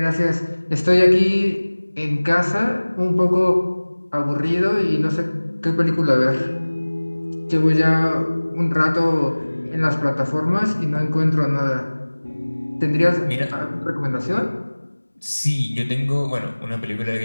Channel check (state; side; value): inverted; both; correlation -1.00